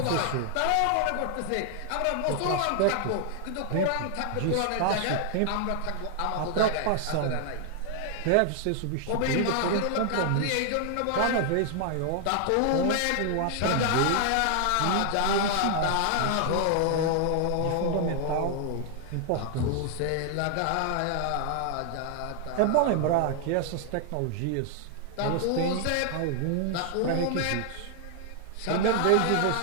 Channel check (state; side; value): different; both; correlation 0.00